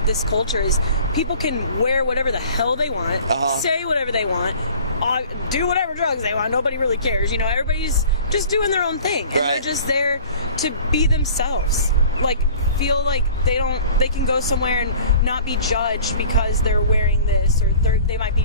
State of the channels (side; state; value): both; inverted; correlation -0.47